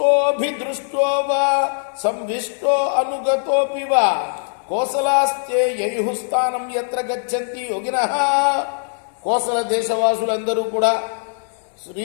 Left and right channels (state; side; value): silent; right; 65 dB below the other